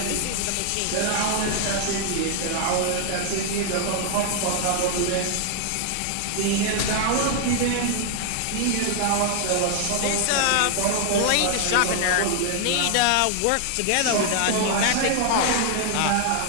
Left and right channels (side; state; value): both; different; correlation 0.00